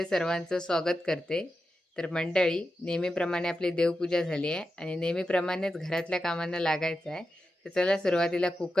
सर्वांचं स्वागत करते. तर मंडळी, नेहमीप्रमाणे आपली देवपूजा झाली आहे आणि नेहमीप्रमाणेच घरातल्या कामांना लागायचं आहे. तर चला सुरुवातीला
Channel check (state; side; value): normal; both; correlation 0.90